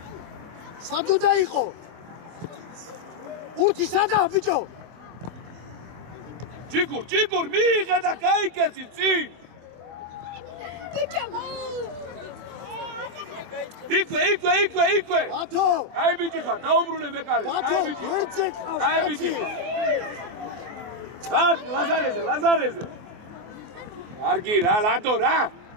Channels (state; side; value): late; left; 24 ms